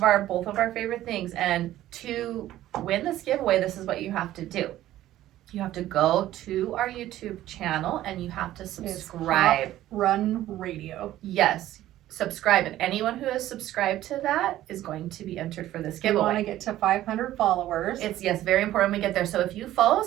of our favorite things, and to win this giveaway, this is what you have to do. You have to go to our YouTube channel and you have to subscribe. Run Radio. Yes, subscribe, and anyone who has subscribed to that is going to be entered for this We want giveaway. to get to 500 followers. It's very important we get there. So if you follow us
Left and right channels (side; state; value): left; quieter; 14.0 dB